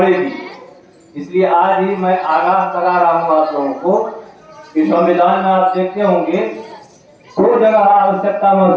इसलिए आज ही मैं आगाह करा रहा हूँ आप लोगों को कि संविधान में आप देखते होंगे 2 जगह आवश्यकता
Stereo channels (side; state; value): both; identical; correlation 1.00